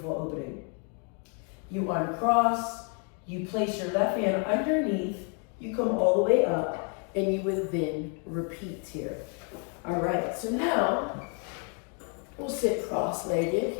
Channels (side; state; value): right; quieter; 39.5 dB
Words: opening. You uncross, you place your left hand underneath, you come all the way up, and you would then repeat here. All right, so now we'll sit cross-legged